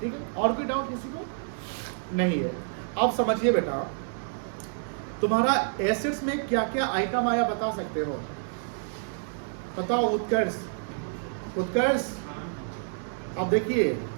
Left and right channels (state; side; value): silent; left; digital silence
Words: ठीक है, और कोई डाउट किसी को नहीं है? अब समझिए बेटा, तुम्हारा एसेट्स में क्या क्या आइटम आया बता सकते हो? बताओ उत्कर्ष, उत्कर्ष। अब देखिए,